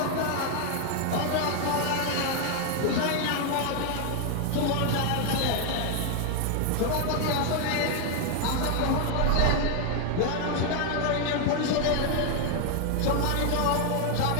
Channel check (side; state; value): both; different; correlation 0.00